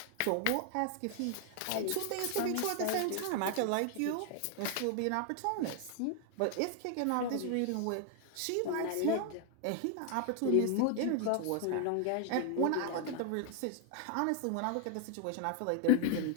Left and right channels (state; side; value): different; both; correlation 0.00